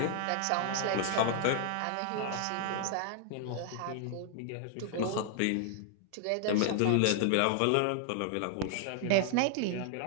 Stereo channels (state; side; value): different; both; correlation 0.00